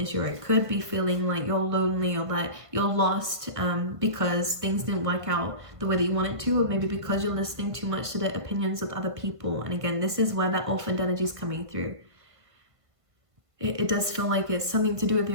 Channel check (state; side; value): late; left; 1.5 ms